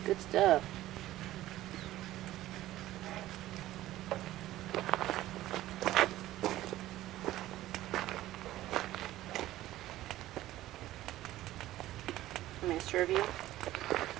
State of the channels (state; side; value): quieter; left; 15.1 dB